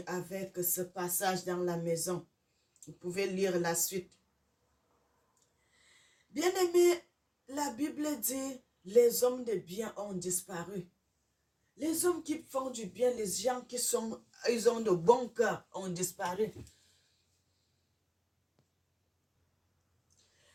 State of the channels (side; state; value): both; identical; correlation 1.00